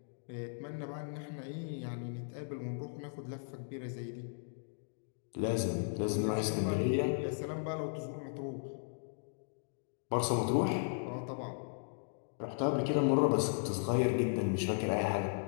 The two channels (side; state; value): right; silent; digital silence